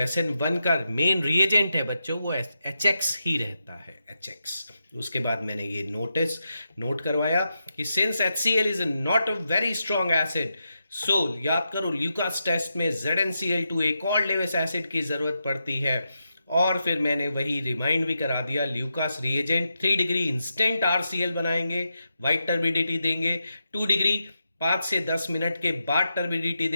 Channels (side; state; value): both; inverted; correlation -0.87